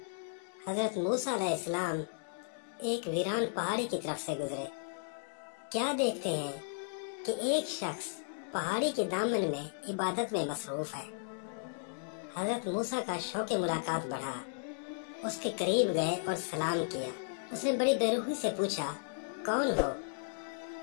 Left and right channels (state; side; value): silent; right; digital silence